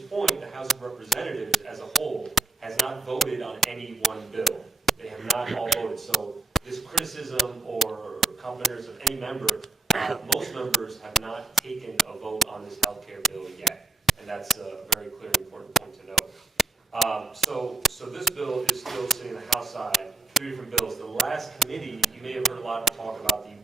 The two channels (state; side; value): quieter; left; 3.0 dB